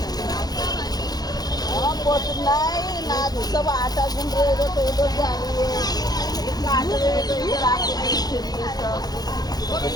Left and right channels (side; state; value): right; late; 0.19 ms